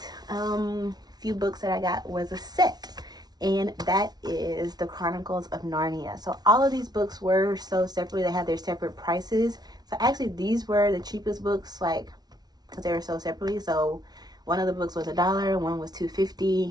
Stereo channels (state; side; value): late; left; 0.19 ms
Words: few books that I got was a set, and that is the Chronicles of Narnia. So all of these books were sold separately. They had their separate prices. So actually these were the cheapest books, like, because they were sold separately. So one of the books was $1, one was